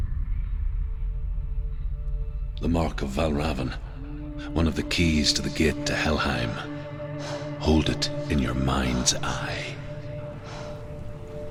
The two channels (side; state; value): both; identical; correlation 1.00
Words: The mark of Valravn, one of the keys to the gate to Helheim. Hold it in your mind's eye.